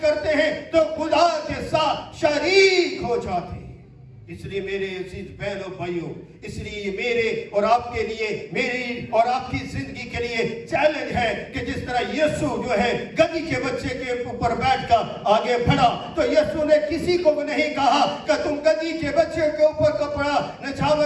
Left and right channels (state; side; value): identical; both; correlation 1.00